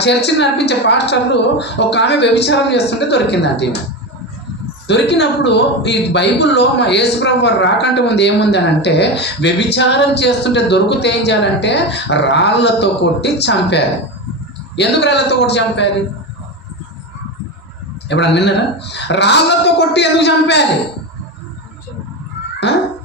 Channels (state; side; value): normal; both; correlation 0.19